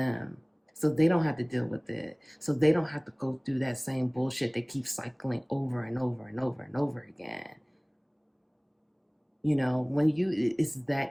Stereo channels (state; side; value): identical; both; correlation 1.00